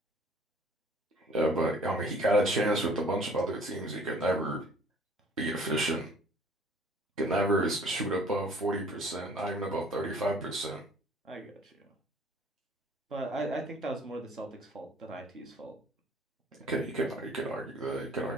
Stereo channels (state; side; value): normal; both; correlation 0.54